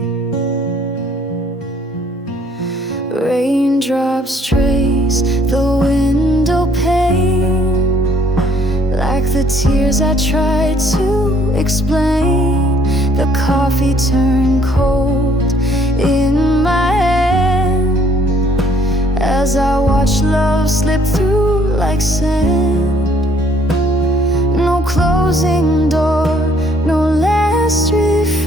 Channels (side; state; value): both; normal; correlation 0.63